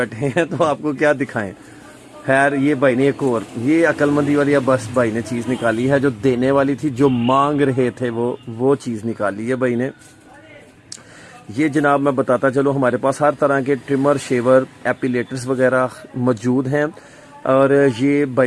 हैं, तो आपको क्या दिखाएं। खैर ये भाई ने एक और ये अक्लमंदी वाली बस भाई ने चीज़ निकाली है, जो देने वाली थी, जो मांग रहे थे वो चीज़ निकाली है भाई ने। ये जनाब मैं बताता चलो, हमारे पास हर तरह के ट्रिमर, शेवर, एपिलेटर्स वगैरह मौजूद हैं। और ये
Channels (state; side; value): identical; both; correlation 1.00